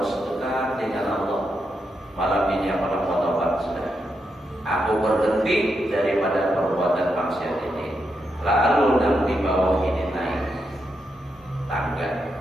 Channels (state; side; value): normal; both; correlation 0.83